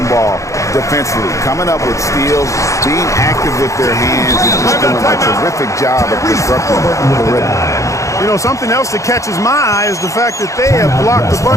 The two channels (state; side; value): late; right; 0.15 ms